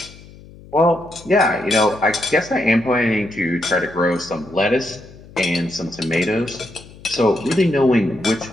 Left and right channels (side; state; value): left; noise; hum, 20 dB below the sound